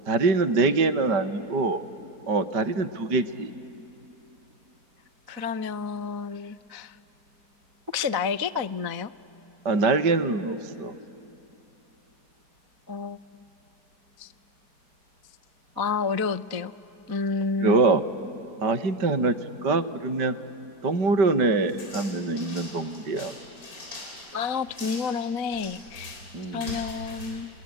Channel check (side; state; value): left; late; 4.1 ms